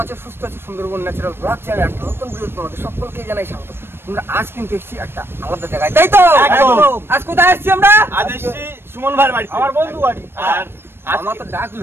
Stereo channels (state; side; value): late; left; 0.11 ms